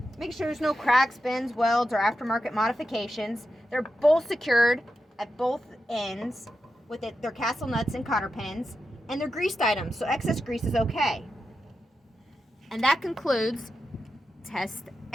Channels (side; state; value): both; normal; correlation 0.89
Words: Make sure there's no cracks, bends, welds, or aftermarket modifications. They're both secured at both ends with their castle nuts and cotter pins, and they're greased items, so excess grease is okay. And that concludes Test